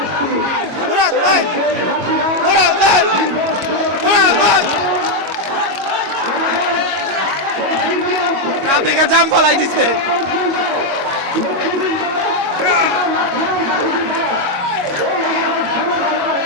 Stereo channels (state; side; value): late; left; 22 ms